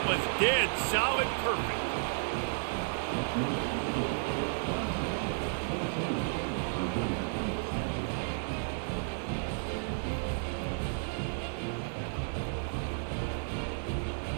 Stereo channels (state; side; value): silent; left; digital silence